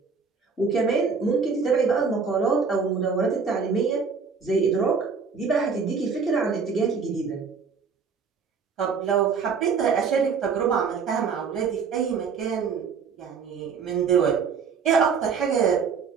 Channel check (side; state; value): left; quieter; 5.6 dB